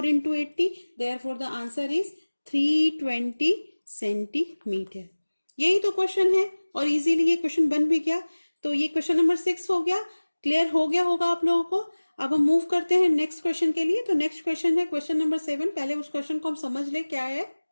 into 80, therefore the answer is 320 centimetre. यही तो क्वेश्चन है और इजीली ये क्वेश्चन बन भी गया। तो ये क्वेश्चन नंबर 6 हो गया, क्लियर हो गया होगा आप लोगों को। अब हम मूव करते हैं नेक्स्ट क्वेश्चन के लिए। तो नेक्स्ट क्वेश्चन है क्वेश्चन नंबर 7। पहले उस क्वेश्चन को हम समझ ले क्या है।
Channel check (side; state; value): both; inverted; correlation -1.00